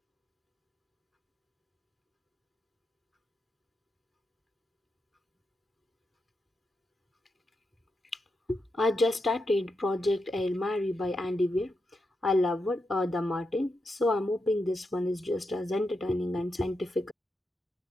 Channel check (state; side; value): normal; both; correlation 0.86